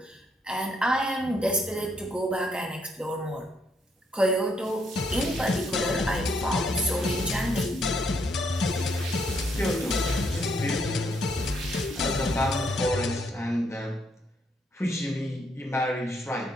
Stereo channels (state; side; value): normal; both; correlation 0.73